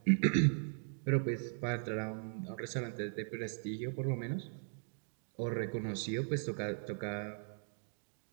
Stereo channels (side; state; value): left; silent; digital silence